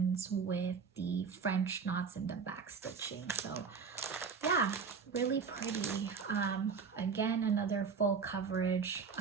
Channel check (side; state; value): left; quieter; 5.7 dB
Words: with the French knots and the back stitching. So yeah, really pretty. Again, another full coverage.